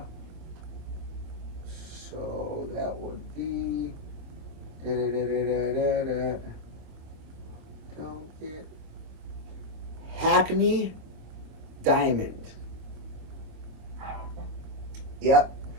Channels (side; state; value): left; late; 25 ms